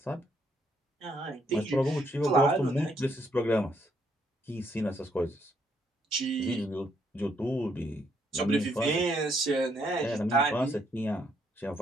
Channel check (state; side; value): normal; both; correlation 0.72